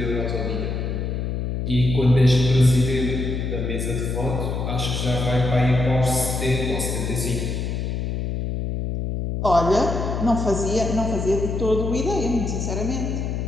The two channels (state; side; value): noise; left; hum, 2 dB below the sound